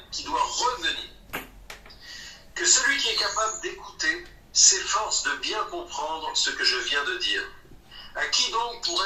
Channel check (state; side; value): identical; both; correlation 1.00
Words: Que celui qui est capable d'écouter s'efforce de bien comprendre ce que je viens de dire. À qui donc